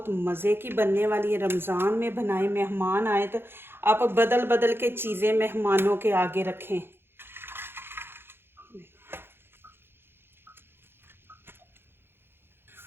मज़े की बनने वाली है। रमज़ान में बनाए, मेहमान आए तो आप बदल बदल के चीज़ें मेहमानों के आगे रखें।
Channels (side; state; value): left; late; 0.11 ms